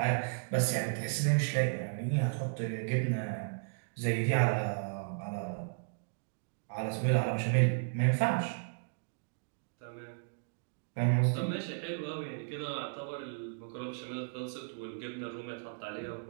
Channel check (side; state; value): left; silent; digital silence